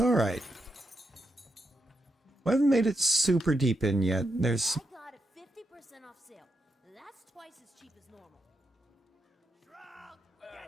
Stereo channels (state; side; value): normal; both; correlation 0.83